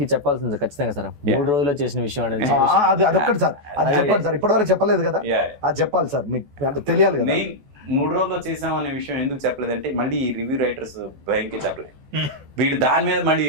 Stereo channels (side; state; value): left; late; 14 ms